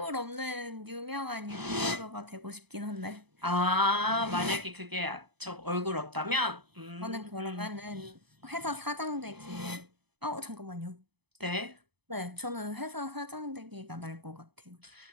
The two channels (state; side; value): late; left; 0.98 ms